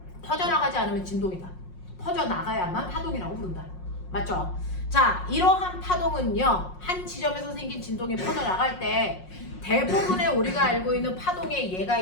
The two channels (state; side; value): late; right; 5.5 ms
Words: 퍼져나가지 않으면 진동이다. 퍼져나가야만 파동이라고 부른다. 맞죠? 자, 이러한 파동은요, 한 지점에서 생긴 진동이 퍼져나갈 때 대부분의 우리가 알고 있는 파동의 예가